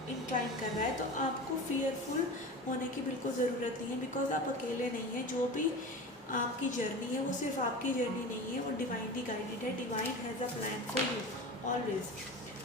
इंक्लाइन कर रहा है। तो आपको फियरफुल होने की बिल्कुल ज़रूरत नहीं है बिकॉज आप अकेले नहीं हैं। जो भी आपकी जर्नी है वो सिर्फ आपकी जर्नी नहीं है, वो डिवाइनली गाइडेड है। Divine has a plan for you always.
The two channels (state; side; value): normal; both; correlation 0.31